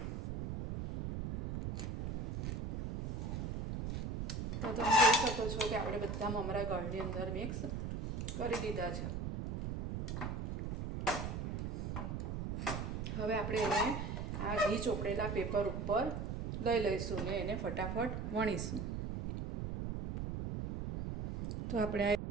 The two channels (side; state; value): right; noise; rumble, 4 dB below the sound